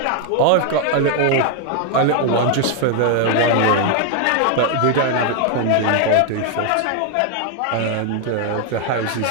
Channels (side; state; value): both; different; correlation 0.00